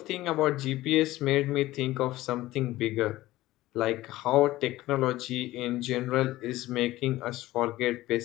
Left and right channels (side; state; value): right; quieter; 16.8 dB